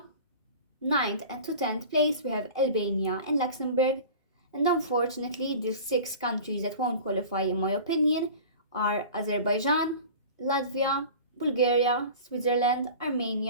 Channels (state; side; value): inverted; both; correlation -0.38